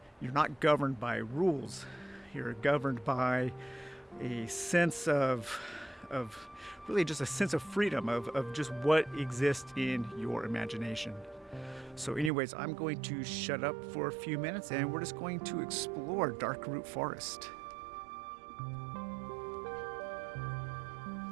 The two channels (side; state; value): left; drops out; at 12.3 s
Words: you're not governed by rules. You're governed by a sense of really just a sense of freedom, of just what exists in your imagination. So anyways, I'm going to shut up for a few minutes, and we're just going to explore Darkroot Forest.